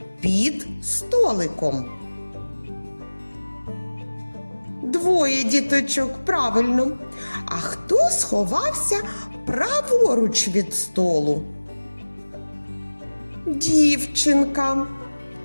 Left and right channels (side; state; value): both; inverted; correlation -1.00